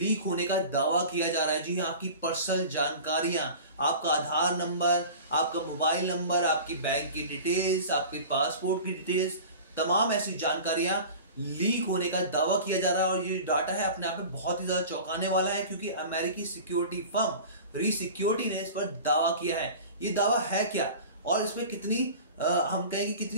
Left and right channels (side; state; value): both; inverted; correlation -0.38